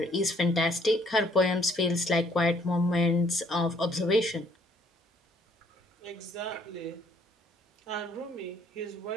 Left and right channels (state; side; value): normal; both; correlation 0.63